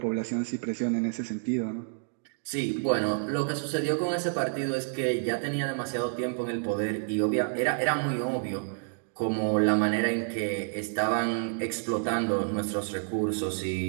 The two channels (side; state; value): left; silent; digital silence